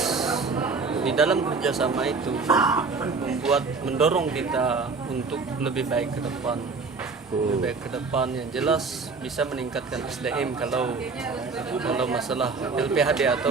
di dalam kerjasama itu mendorong kita untuk lebih baik ke depan. Lebih baik ke depan yang jelas bisa meningkatkan SDM kalau masalah LPHD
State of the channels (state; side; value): quieter; left; 4.4 dB